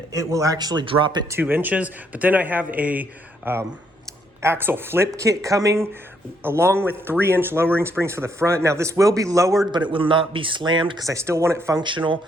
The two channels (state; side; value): normal; both; correlation 0.72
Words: it will actually drop it 2 inches. But then I have a axle flip kit coming along with 3-inch lowering springs for the front. Now this will be lowered, but it will not be slammed because I still want it functional.